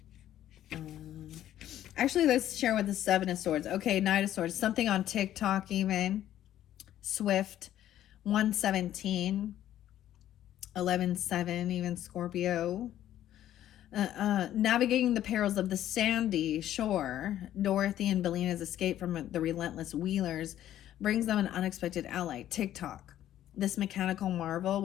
Actually, let's share with the Seven of Swords. Okay, Knight of Swords. Something on TikTok even. Swift. 117. 11-7, even Scorpio. Navigating the perils of the sandy shore, Dorothy and Belena's escape from the relentless Wheelers brings them an unexpected ally, TikTok. This mechanical marvel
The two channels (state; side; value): quieter; right; 12.1 dB